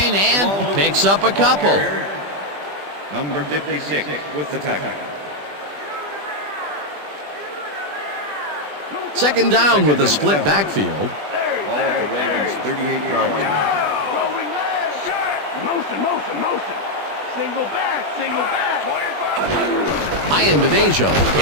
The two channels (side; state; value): left; late; 20 ms